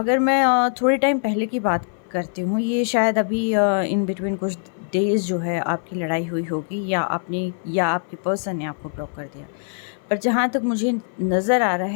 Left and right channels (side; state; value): right; silent; 58 dB below the other